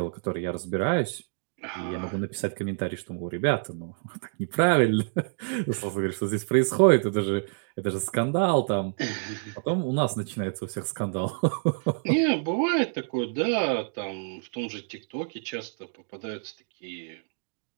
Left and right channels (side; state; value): left; silent; digital silence